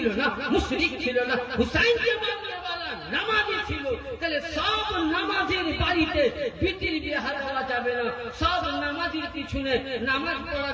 না, মুশরিক ছিল না, হুসাইনকে মারনেওয়ালা নামাজি ছিল। তাহলে সব নামাজের বাড়িতে বিটির বিহা দেওয়া যাবে না, সব নামাজের পিছনে নামাজ পড়া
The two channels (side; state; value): both; identical; correlation 1.00